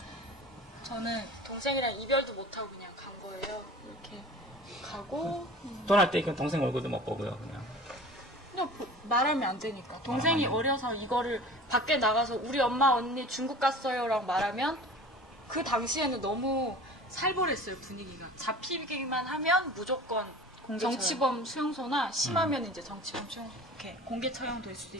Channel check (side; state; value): both; normal; correlation 0.40